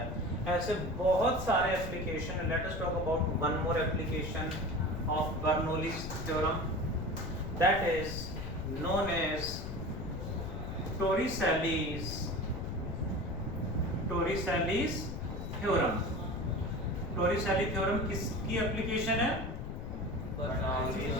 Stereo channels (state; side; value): noise; left; rumble, 6 dB below the sound